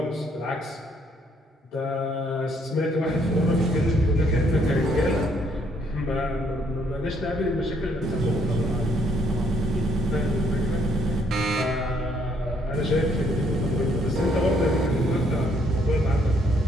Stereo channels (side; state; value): both; normal; correlation 0.69